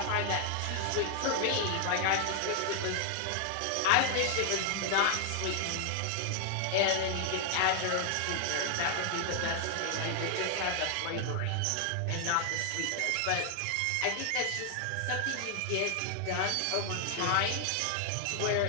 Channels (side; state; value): both; different; correlation 0.00